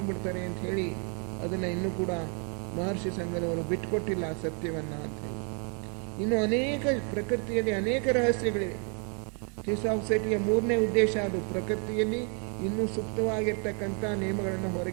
ಅಂತ ಹೇಳಿ ಅದನ್ನು ಇನ್ನೂ ಕೂಡ ಮಹರ್ಷಿ ಸಂಘದವರು ಬಿಟ್ಕೊಟ್ಟಿಲ್ಲ ಆ ಸತ್ಯವನ್ನು ಅಂತ ಹೇಳಿ. ಇನ್ನು ಅನೇಕ ಪ್ರಕೃತಿಯಲ್ಲಿ ಅನೇಕ ರಹಸ್ಯಗಳಿವೆ. ಥಿಯೋಸಾಫಿಸಿಟಿಯ 3ನೇ ಉದ್ದೇಶ ಅದು ಪ್ರಕೃತಿಯಲ್ಲಿ ಇನ್ನೂ ಸುಪ್ತವಾಗಿರ್ತಕ್ಕಂಥ ನಿಯಮಗಳನ್ನು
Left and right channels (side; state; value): left; quieter; 38.4 dB